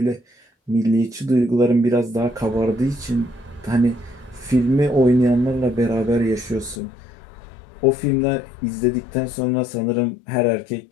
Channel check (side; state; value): right; drops out; at 6.8 s